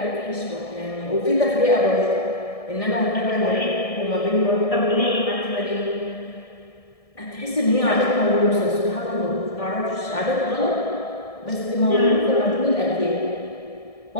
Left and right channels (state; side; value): late; right; 1.7 ms